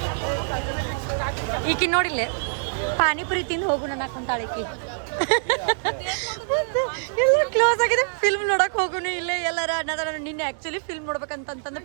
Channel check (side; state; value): left; silent; digital silence